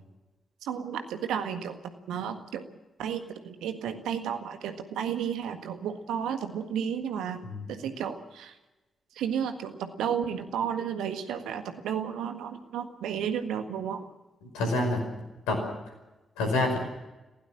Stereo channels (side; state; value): left; quieter; 4.1 dB